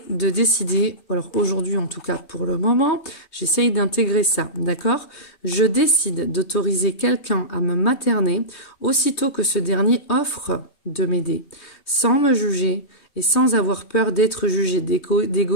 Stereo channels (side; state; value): right; late; 3.2 ms